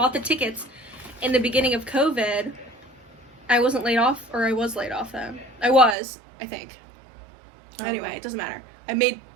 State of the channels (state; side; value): drops out; left; at 6.0 s